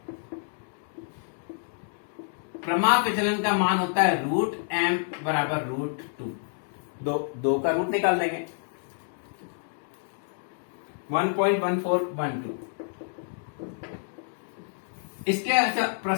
प्रमाप विचलन का मान होता है √m बराबर √2। 2 का रूट निकाल देंगे, 1.1412। इसके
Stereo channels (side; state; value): right; silent; digital silence